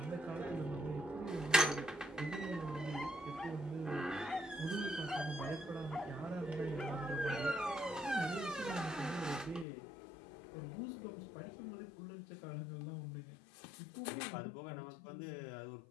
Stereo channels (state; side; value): drops out; right; at 9.7 s